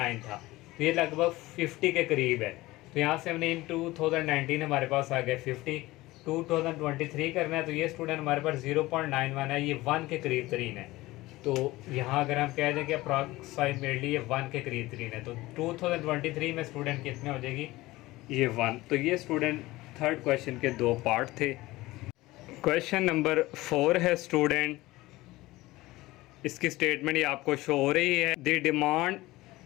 था, तो ये लगभग 50 के करीब है। तो यहाँ से हमने इन 2019 हमारे पास आ गया 50, 2023 करना है तो ये स्टूडेंट हमारे पास 0.91 है, ये 1 के करीब तरीन है। तो यहाँ अगर हम कह दें कि अप्रॉक्सिमेटली ये 1 के करीब तरीन है, तो 2023 में स्टूडेंट कितने हो जाएगी, ये 1। तो ये स्टूडेंट थर्ड क्वेश्चन के 2 पार्ट थे। क्वेश्चन नंबर 4 है स्टूडेंट, इसकी स्टेटमेंट ये आपको शो हो रही है। The demand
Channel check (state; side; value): quieter; right; 18.9 dB